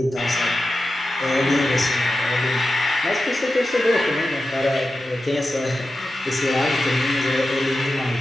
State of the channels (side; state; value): both; normal; correlation 0.92